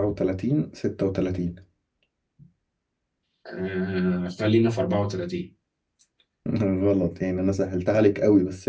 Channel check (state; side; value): identical; both; correlation 1.00